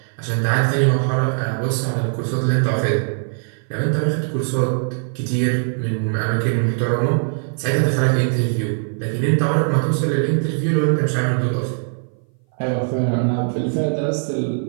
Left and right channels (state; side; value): silent; left; 59 dB below the other